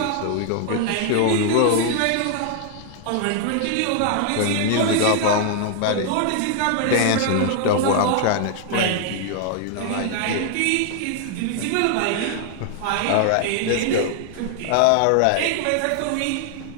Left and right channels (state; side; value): different; both; correlation 0.00